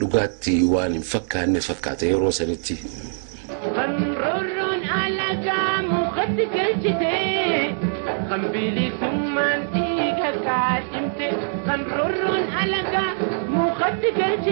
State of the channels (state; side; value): silent; left; digital silence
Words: waan hin fakkaanne fakkaata yeroo sanitti. Qanroorroon alagaa mukatti galchite qambiilii summaan dhiiga kaadhimte. Qanroorroon alagaa mukatti